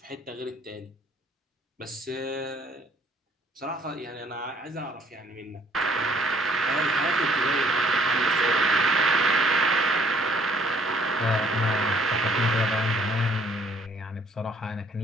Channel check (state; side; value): normal; both; correlation 0.62